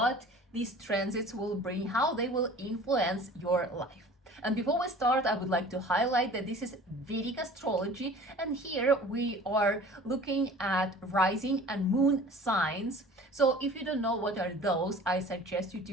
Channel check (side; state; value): both; normal; correlation 0.45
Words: these transits will bring, how they will influence your life. And before we start, I would like to highlight that this is Vedic astrology, and here we are looking at rising and moon signs. So if you don't know what are those, I suggest you